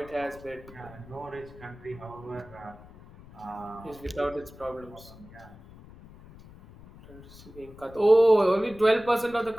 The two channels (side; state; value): left; noise; rumble, 20 dB below the sound